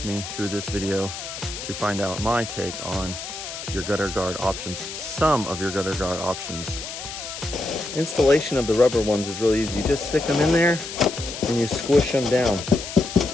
me through this video to find out my take on your gutter guard options, some of your gutter guard options. Installation of the rubber ones is really easy. You just stick them in there and you squish them down.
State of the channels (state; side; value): noise; left; hiss, 9 dB below the sound